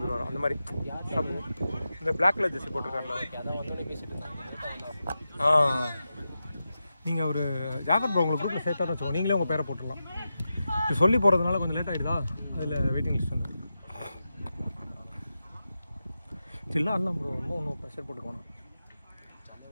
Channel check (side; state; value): both; inverted; correlation -0.90